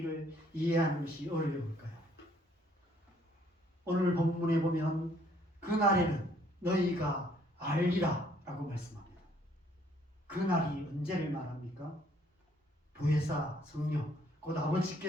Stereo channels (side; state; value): both; normal; correlation 0.64